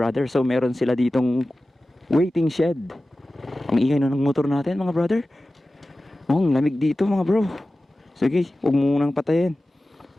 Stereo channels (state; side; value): normal; both; correlation 0.96